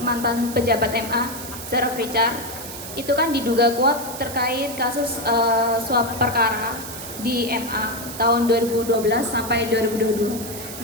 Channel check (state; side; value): noise; right; hiss, 10 dB below the sound